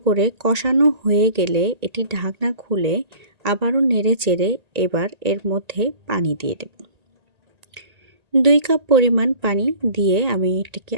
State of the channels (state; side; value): late; left; 1.9 ms